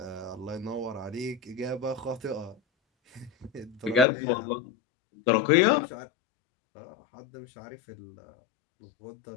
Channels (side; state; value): right; drops out; at 4.0 s